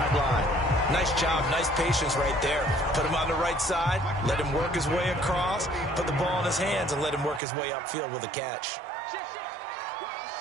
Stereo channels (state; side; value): drops out; left; at 7.4 s